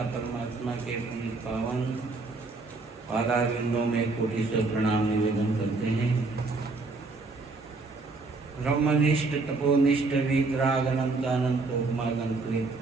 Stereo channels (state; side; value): quieter; left; 3.7 dB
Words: परमात्मा के पुनीत पावन पादारविंदों में कोटि से प्रणाम निवेदन करते हैं। ब्रह्मनिष्ठ तपोनिष्ठ वितराग अनंत अनंत उपमागंकृत